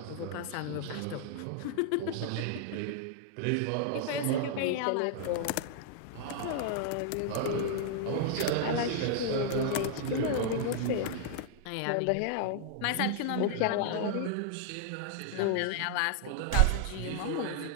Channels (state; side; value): different; both; correlation 0.00